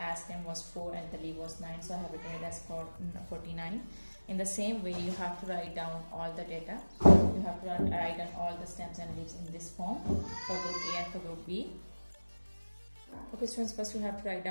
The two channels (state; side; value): inverted; both; correlation -1.00